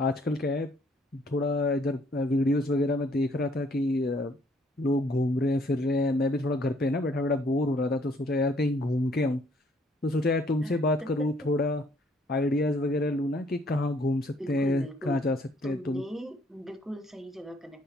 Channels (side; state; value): both; normal; correlation 0.64